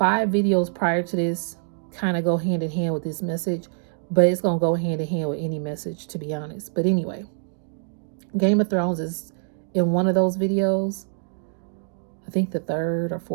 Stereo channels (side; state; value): left; silent; digital silence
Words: videos prior to this kind of go hand in hand with this message, but it's going to go hand in hand with any message, to be honest. But anyway, Game of Thrones is in one of those videos. I think the 3rd or